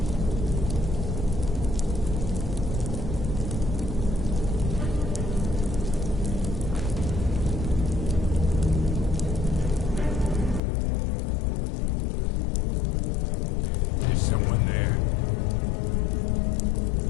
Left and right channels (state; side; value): drops out; right; at 10.6 s